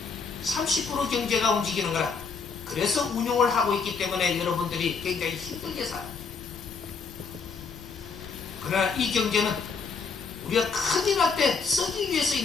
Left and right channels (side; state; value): right; quieter; 5.2 dB